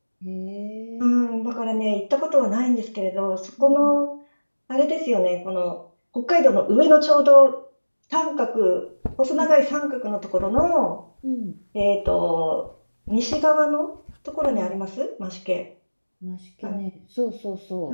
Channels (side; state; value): both; inverted; correlation -1.00